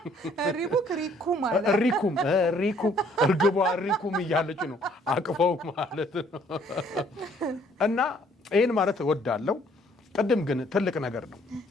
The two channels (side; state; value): both; normal; correlation 0.62